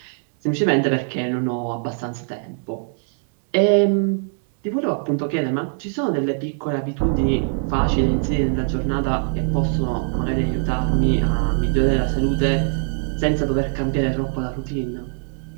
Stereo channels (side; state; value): left; silent; 64 dB below the other